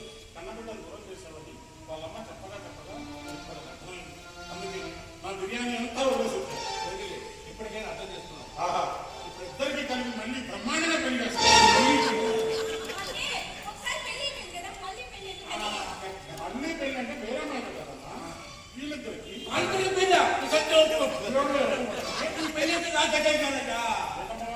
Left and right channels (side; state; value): both; identical; correlation 1.00